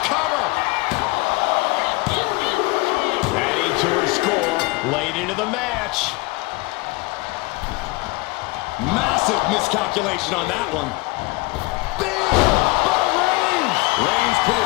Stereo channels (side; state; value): right; quieter; 23.8 dB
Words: Cover. Adding to her score late into the match. Massive miscalculation on that one. Reigns put